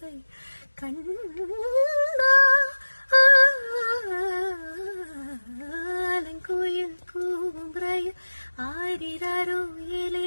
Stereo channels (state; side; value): inverted; both; correlation -1.00